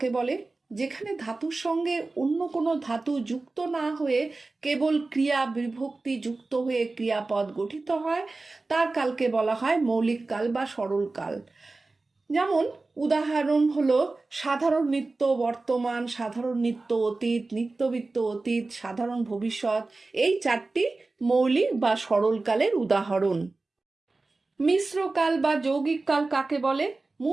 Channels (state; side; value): quieter; left; 3.4 dB